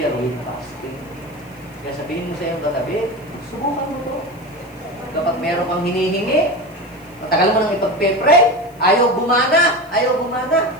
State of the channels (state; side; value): noise; left; hiss, 28 dB below the sound